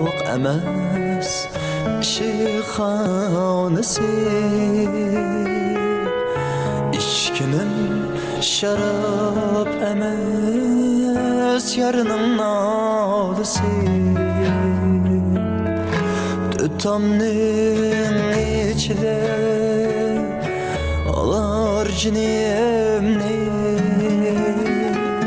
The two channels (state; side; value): identical; both; correlation 1.00